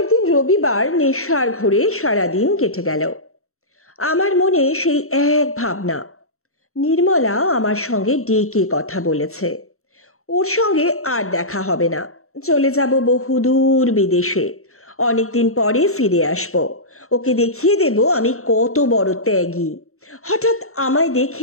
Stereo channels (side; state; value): right; late; 0.63 ms